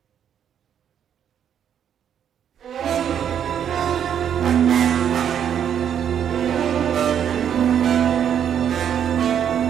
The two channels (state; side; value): quieter; left; 8.9 dB